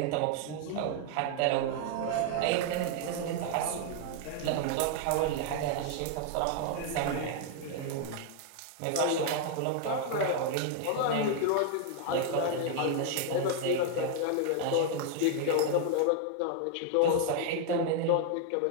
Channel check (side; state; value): both; different; correlation 0.00